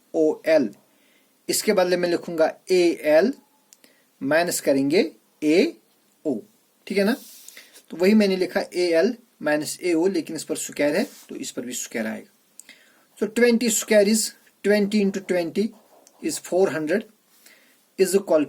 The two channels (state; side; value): identical; both; correlation 1.00